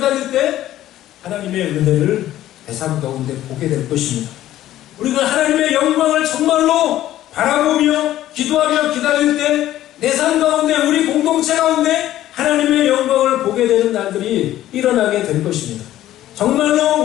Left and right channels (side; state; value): right; quieter; 13.6 dB